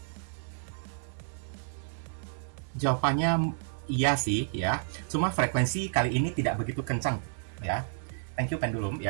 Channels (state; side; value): silent; left; 57 dB below the other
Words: Jawabannya iya sih ya, cuma frekuensi kali ini tidak begitu kencang ya. Thank you pendulum